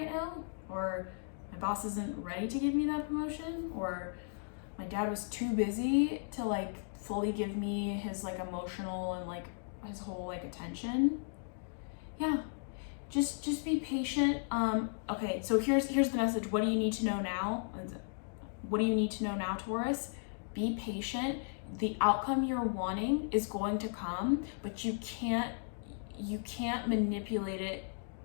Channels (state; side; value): silent; right; digital silence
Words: now, or my boss isn't ready to give me that promotion, or my dad was too busy to like fully give me his like emotional and like his whole like attention. Yeah, just be patient. Okay, so here's the message. What do you need to know now? What do you need to know now, Taurus? Be patient. The outcome you're wanting is going to come, but you can't manipulate it